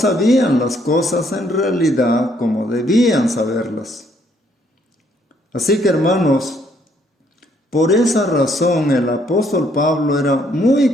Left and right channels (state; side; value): normal; both; correlation 0.68